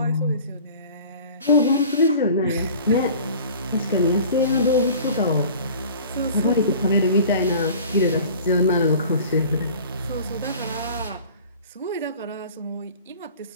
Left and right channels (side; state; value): both; inverted; correlation -0.44